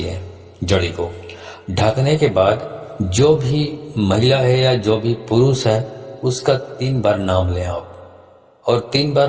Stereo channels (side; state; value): both; identical; correlation 1.00